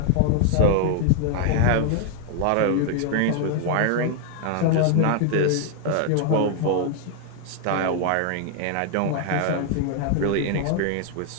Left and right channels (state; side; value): different; both; correlation 0.00